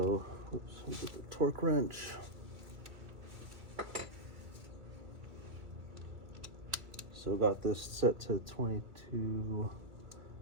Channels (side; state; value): left; late; 2.4 ms